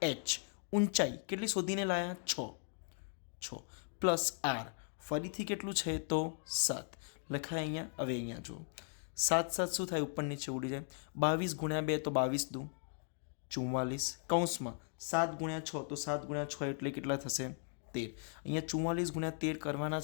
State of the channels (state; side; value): silent; right; 53 dB below the other